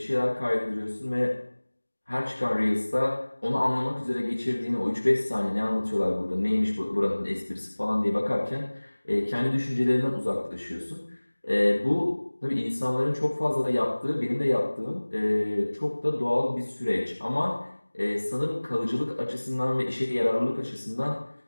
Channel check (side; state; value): both; inverted; correlation -1.00